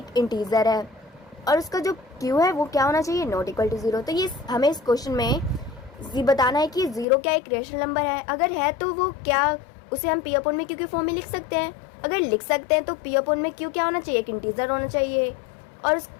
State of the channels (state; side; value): drops out; right; at 7.1 s